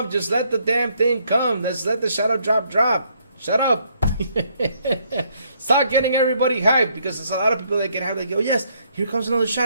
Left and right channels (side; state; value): both; inverted; correlation -0.70